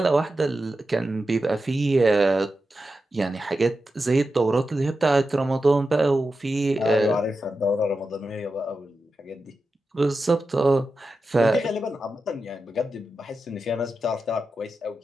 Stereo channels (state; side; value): normal; both; correlation 0.91